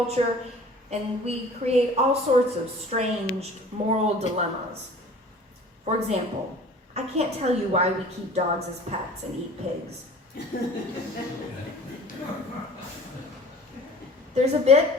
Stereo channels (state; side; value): normal; both; correlation 0.46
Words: and we create all sorts of strange moral dilemmas. For example, I can't tell you why we keep dogs as pets and eat pigs. There's a